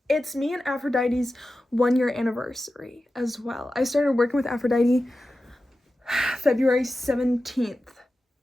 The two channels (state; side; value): normal; both; correlation 0.93